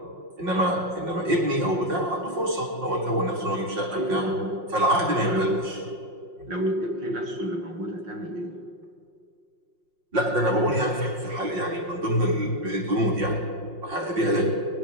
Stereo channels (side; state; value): left; late; 5.6 ms